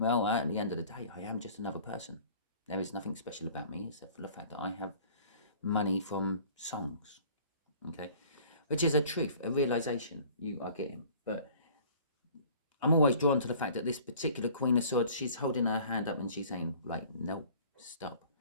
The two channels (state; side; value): inverted; both; correlation -0.49